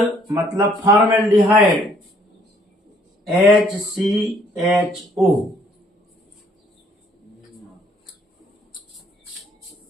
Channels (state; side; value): normal; both; correlation 0.63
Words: मतलब फॉर्मेल्डिहाइड HCHO।